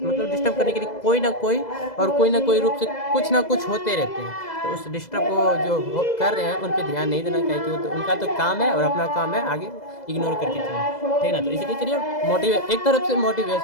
करने के लिए कोई ना कोई रूप से कुछ ना कुछ होते रहते हैं। तो उस डिस्टर्ब को जो कर रहे हैं उन पर ध्यान नहीं देना चाहिए, कि वो तो उनका तो काम है और अपना काम है आगे इग्नोर करके चलें, ठीक ना। तो इसलिए चलिए एक तरफ से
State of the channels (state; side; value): late; right; 2.0 ms